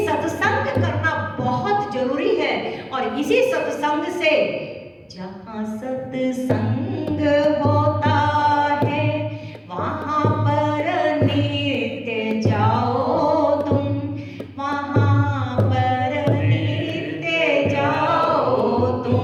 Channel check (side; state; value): both; identical; correlation 1.00